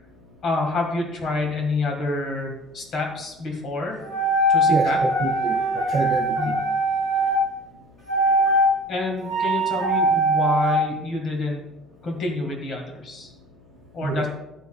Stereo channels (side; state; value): left; noise; hum, 29 dB below the sound